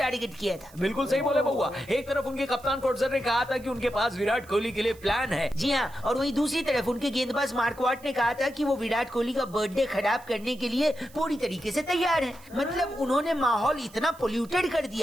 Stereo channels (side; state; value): right; noise; hiss, 24 dB below the sound